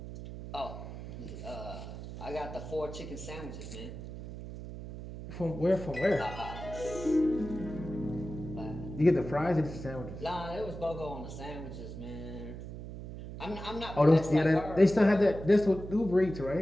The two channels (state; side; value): noise; right; hum, 10 dB below the sound